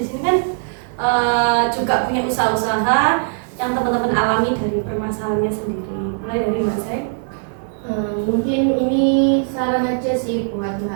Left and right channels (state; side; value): silent; left; 61 dB below the other